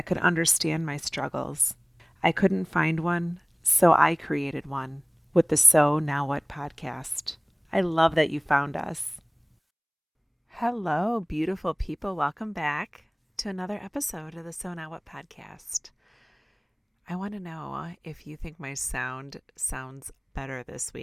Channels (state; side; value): identical; both; correlation 1.00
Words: could understand my struggles. I couldn't find one, so I created one with the So Now What podcast. I love that you found us. Hello, beautiful people. Welcome back to another episode of the So Now What podcast. I want to know if you think my sound sounds better this